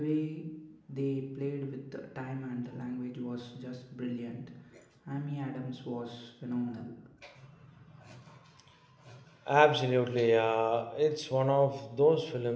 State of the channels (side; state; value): both; identical; correlation 1.00